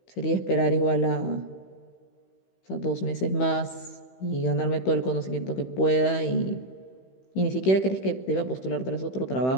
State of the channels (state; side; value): late; right; 16 ms